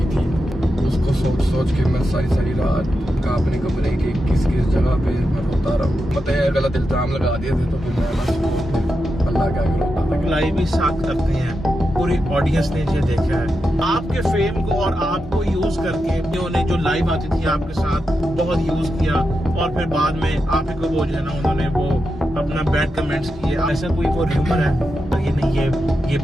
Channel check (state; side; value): normal; both; correlation 0.88